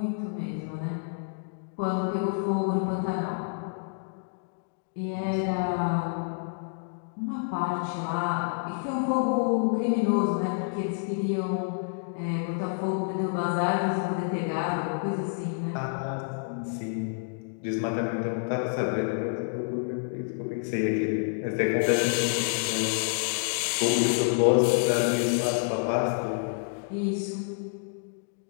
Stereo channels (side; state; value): right; silent; digital silence